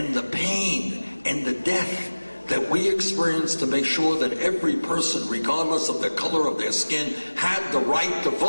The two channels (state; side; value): inverted; both; correlation -1.00